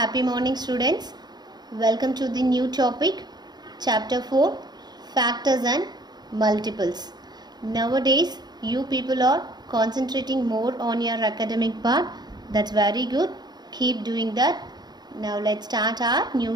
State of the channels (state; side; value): late; left; 0.20 ms